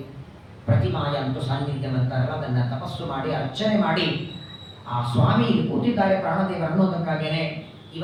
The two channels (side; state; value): both; identical; correlation 1.00